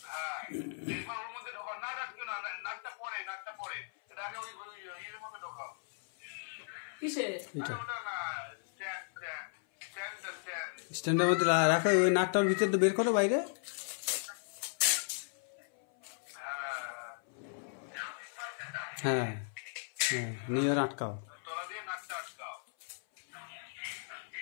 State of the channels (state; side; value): silent; right; 54 dB below the other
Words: এইবার ওর মধ্যে ঢোকাও, নাট আটকে না, নাটটা পরে, নাটটা পরে, এটা আগে ওই এর মধ্যে ঢোকাও। কিসে? ওটা না, স্ট্যান্ডের মধ্যে রাখো, ওই নাকটার ভিতরে তো বের করো বাইরে। হ্যাঁ হ্যাঁ, নিয়ে আটকাও,